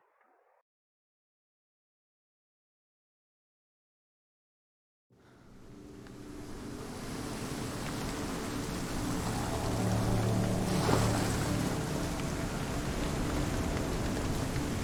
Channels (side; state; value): both; identical; correlation 1.00